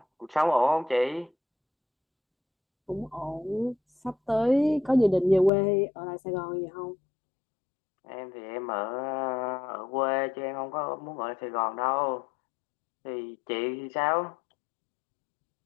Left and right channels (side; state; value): right; drops out; at 5.5 s